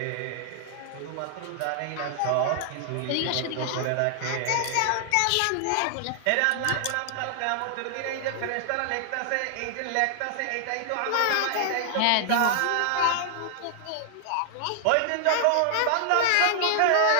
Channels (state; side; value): different; both; correlation 0.00